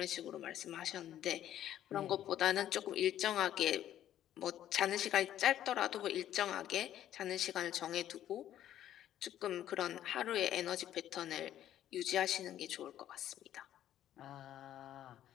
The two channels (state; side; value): quieter; right; 11.7 dB